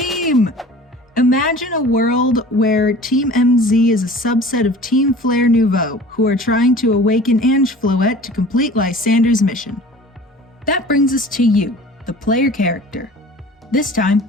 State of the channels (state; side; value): normal; both; correlation 0.43